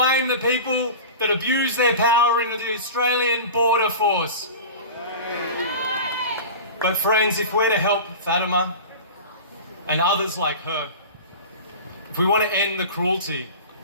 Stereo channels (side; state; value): both; inverted; correlation -0.33